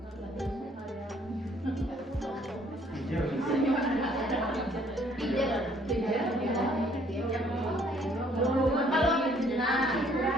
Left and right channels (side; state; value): both; normal; correlation 0.62